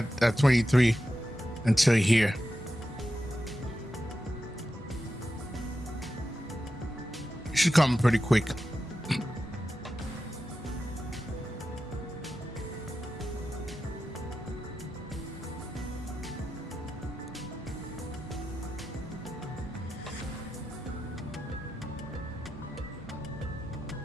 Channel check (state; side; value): normal; both; correlation 0.90